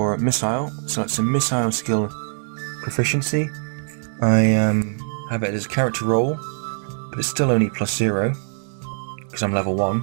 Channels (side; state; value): left; silent; 64 dB below the other